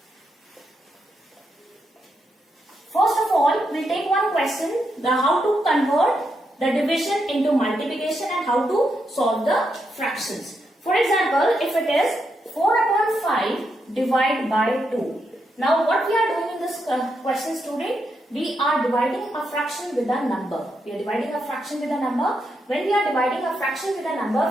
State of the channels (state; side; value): normal; both; correlation 0.82